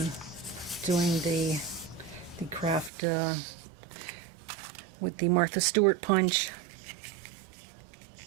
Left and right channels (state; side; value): drops out; left; at 2.9 s